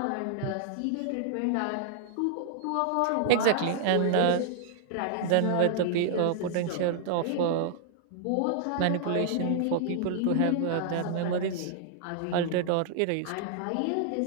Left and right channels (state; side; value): different; both; correlation -0.01